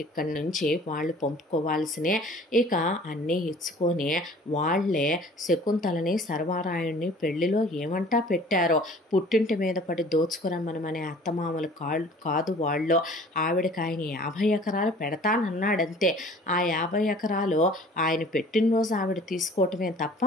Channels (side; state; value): both; normal; correlation 0.49